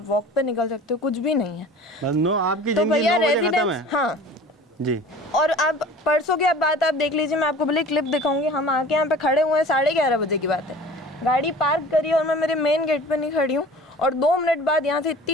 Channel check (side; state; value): both; normal; correlation 0.43